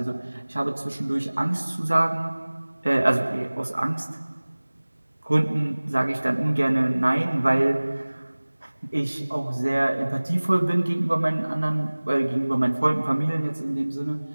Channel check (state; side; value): inverted; both; correlation -1.00